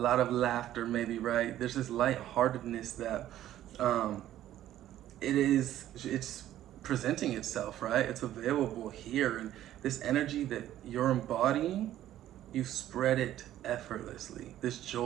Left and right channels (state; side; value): quieter; left; 12.8 dB